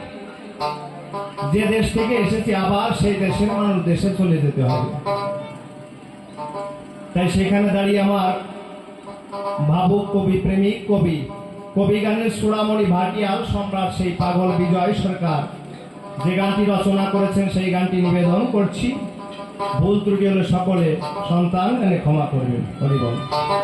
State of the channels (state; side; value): identical; both; correlation 1.00